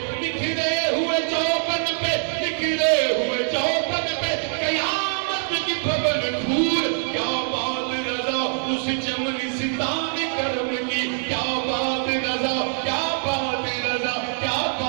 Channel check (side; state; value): left; silent; digital silence